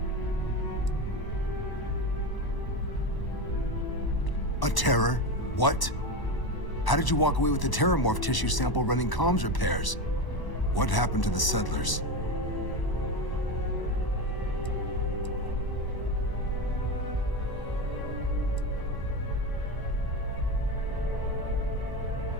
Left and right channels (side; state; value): right; late; 1.0 ms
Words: A terror? What? How did you walk away with the terramorph tissue sample running comms repairs? What happened to the settlers?